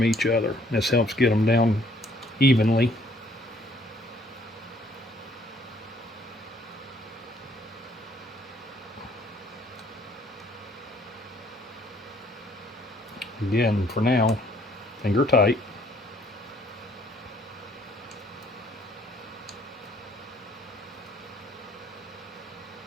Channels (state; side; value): normal; both; correlation 0.62